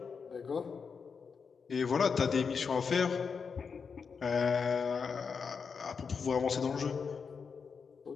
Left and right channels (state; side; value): quieter; right; 5.7 dB